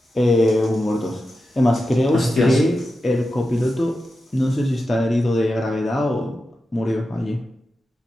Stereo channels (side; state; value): both; normal; correlation 0.90